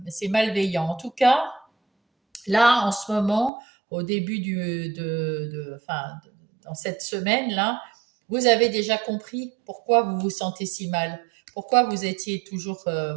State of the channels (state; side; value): drops out; left; at 3.5 s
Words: malveillant. En tout cas, là, en ce moment, au début enfin, dans cette semaine-là, vous avez déjà compris pourquoi vous vous sentez si mal, pourquoi vous étiez toujours,